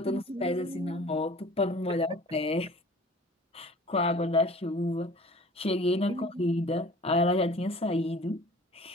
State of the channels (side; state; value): both; normal; correlation 0.46